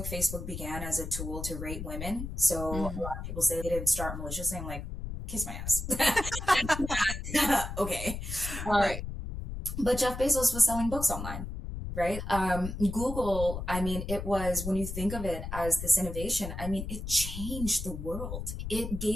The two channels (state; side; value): noise; left; rumble, 6 dB below the sound